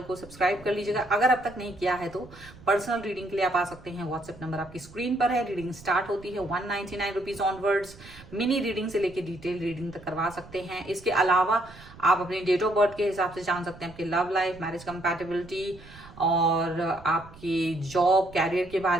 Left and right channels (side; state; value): right; noise; rumble, 20 dB below the sound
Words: को सब्सक्राइब कर लीजिएगा। अगर अब तक नहीं किया है तो पर्सनल रीडिंग के लिए आप आ सकते हैं, व्हाट्सएप नंबर आपकी स्क्रीन पर है। रीडिंग स्टार्ट होती है 199 रुपीज ऑनवर्ड्स। मिनी रीडिंग से लेके डिटेल रीडिंग तक करवा सकते हैं। इसके अलावा आप अपनी डेट ऑफ बर्थ के हिसाब से जान सकते हैं आपके लव लाइफ, मैरिज कंपैटिबिलिटी, और आपकी जॉब, कैरियर के